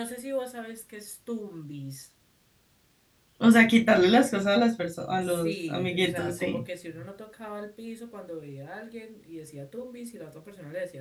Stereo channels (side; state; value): both; identical; correlation 1.00